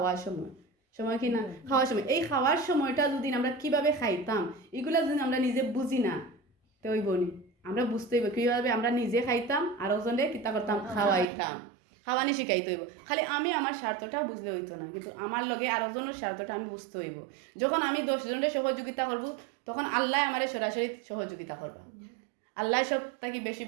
সময় কি না খাওয়ার সময় এই খাওয়ার সময়টা যদি আমরা কিভাবে খাইতাম এগুলা যদি আমরা নিজে বুঝি না তো ওই বনি আমরা বুঝতে হইব কীভাবে আমরা নিজে খাইতাম আর ওজনে কিতা করতাম খাওয়াইতাম খাওয়ানি শিখাইতে হইব খালি আমি আমার স্বার্থটা বুঝলে হইতো না কিন্তু আমার লগে আর ওজনের স্বার্থটা আমি বুঝতে হইব যখন আমি 10 জনের সহযোগিতা করব তখন আল্লাহ আমার সরাসরি সহযোগিতা করবা আল্লাহ সব তাকে বেশি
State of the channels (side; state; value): left; drops out; at 11.2 s